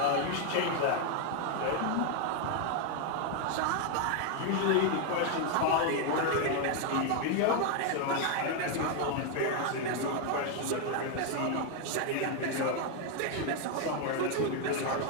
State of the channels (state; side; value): different; both; correlation 0.01